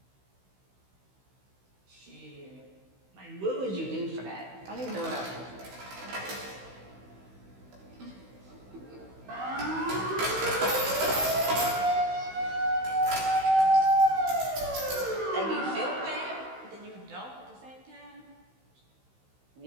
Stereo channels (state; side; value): late; left; 16 ms